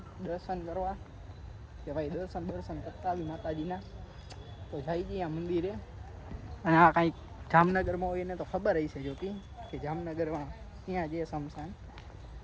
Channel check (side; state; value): both; identical; correlation 1.00